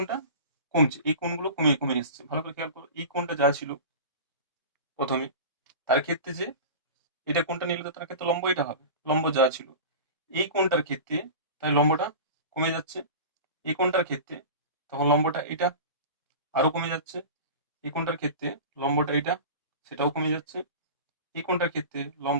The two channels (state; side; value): inverted; both; correlation -0.33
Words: কমছে, এই কোণগুলো কমে কমে এসছে, ভালো করে খেয়াল করো। এই কোণটা যা ছিল প্রথমে, তার ক্ষেত্রে যে এটা কোণটা নিলে তো তার ক্ষেত্রে লম্ব এটা হবে, লম্ব যা ছিল। এই কোণটার ক্ষেত্রে তাই লম্বটা কমে যাচ্ছে, এই কোণটার ক্ষেত্রে তখন লম্বটা এটা আরো কমে যাচ্ছে, এই কোণটার ক্ষেত্রে লম্বটা এটা সেটাও কমে যাচ্ছে, এই কোণটার ক্ষেত্রে